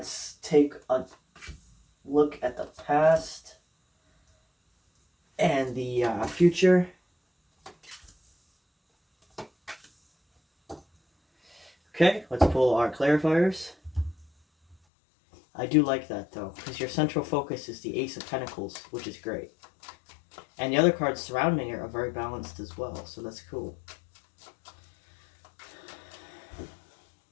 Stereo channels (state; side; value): drops out; right; at 14.8 s